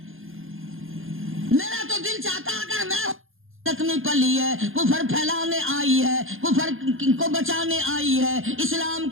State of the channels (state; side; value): late; left; 0.59 ms